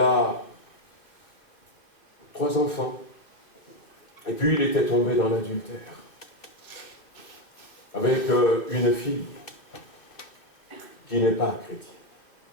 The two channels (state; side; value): late; right; 2.7 ms